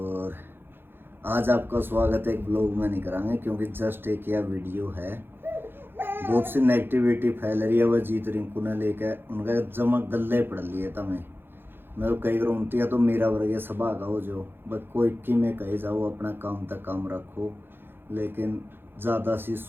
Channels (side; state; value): left; late; 0.10 ms